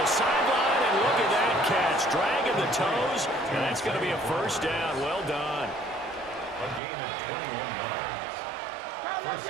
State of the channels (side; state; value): left; drops out; at 6.8 s